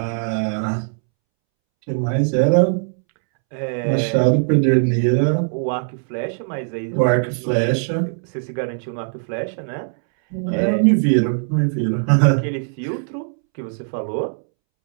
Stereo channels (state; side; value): silent; left; 66 dB below the other